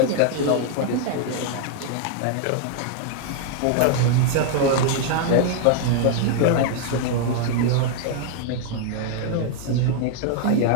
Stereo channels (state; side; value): different; both; correlation 0.00